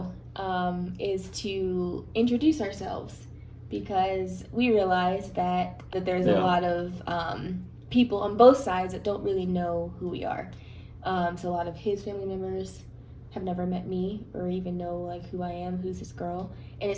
is to introduce ourselves because we realize that there's a lot of people on both sides that don't really know who we are. So a lot of his family members have never met me or even know like who I am, who's this girl, and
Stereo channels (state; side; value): identical; both; correlation 1.00